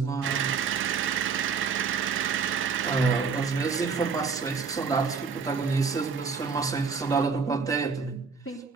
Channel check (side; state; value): left; quieter; 5.4 dB